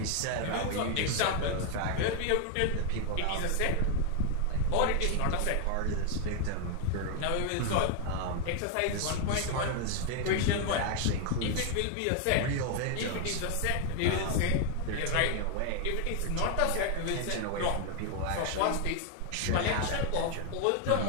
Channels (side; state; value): both; different; correlation 0.00